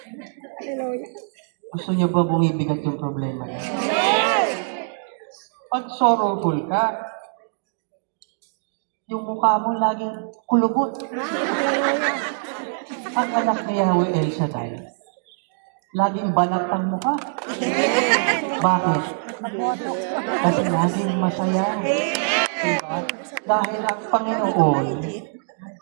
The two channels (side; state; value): left; silent; digital silence